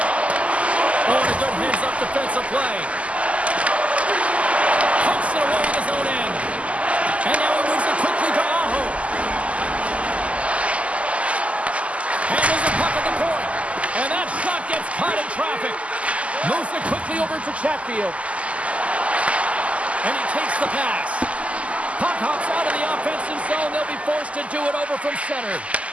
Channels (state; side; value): late; left; 0.063 ms